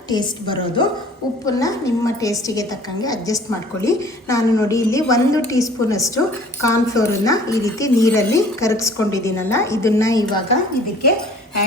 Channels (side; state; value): both; normal; correlation 0.51